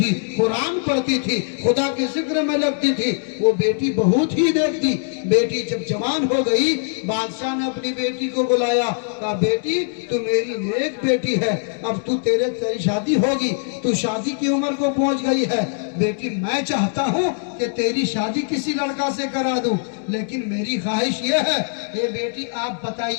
قرآن پڑھتی تھی، خدا کے ذکر میں لگتی تھی، وہ بیٹی بہت ہی دیکھتی۔ بیٹی جب جوان ہو گئی، بادشاہ نے اپنی بیٹی کو بلایا، کہا بیٹی تو میری نیک بیٹی ہے، اب تیری شادی ہوگی، تو شادی کی عمر کو پہنچ گئی ہے، بیٹی میں چاہتا ہوں کہ تیری شادی کسی لڑکا سے کرا دوں، لیکن میری خواہش یہ ہے، اے بیٹی آپ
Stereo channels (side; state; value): right; silent; digital silence